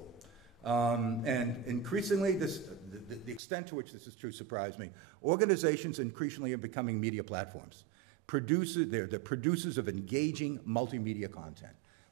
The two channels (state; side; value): drops out; left; at 3.4 s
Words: And increasingly, the extent to which this is true surprised me. Organizations increasingly are becoming media platforms. They're the producers of engaging multimedia content,